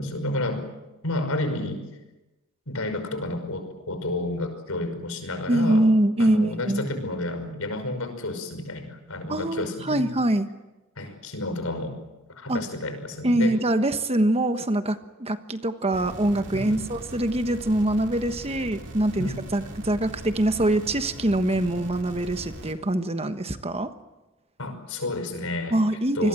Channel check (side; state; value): both; normal; correlation 0.64